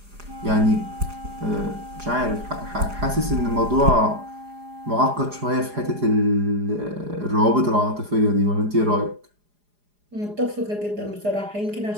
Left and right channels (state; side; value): late; left; 4.9 ms